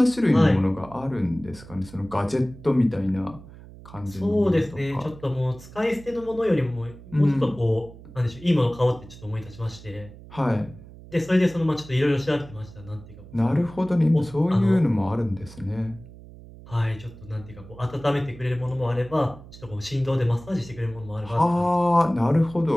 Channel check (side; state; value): right; noise; hum, 18 dB below the sound